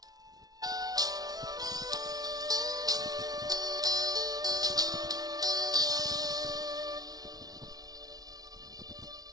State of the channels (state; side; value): late; left; 0.19 ms